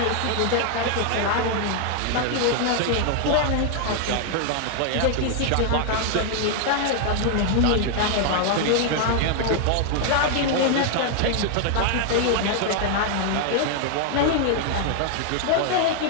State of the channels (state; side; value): different; both; correlation 0.00